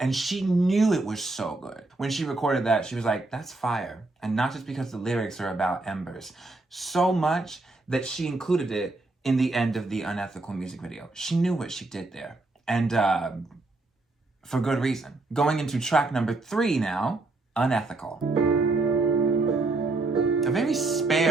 she knew it was so good. When she recorded that, she was like, that's fire. And not just because the lyrics are about embers. So much that she included it in the end of the Unethical music video. She knew what she did there. And for good reason. Going into track number 3 now, Unethical. A very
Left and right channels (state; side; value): quieter; left; 3.2 dB